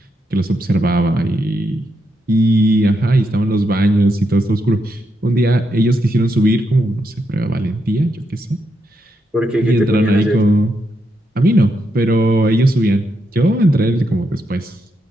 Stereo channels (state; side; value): normal; both; correlation 0.81